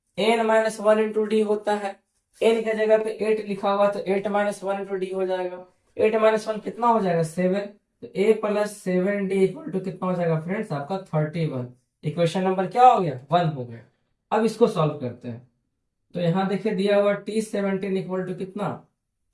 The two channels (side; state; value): both; identical; correlation 1.00